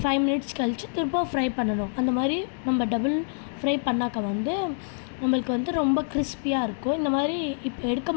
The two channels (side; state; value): right; silent; 61 dB below the other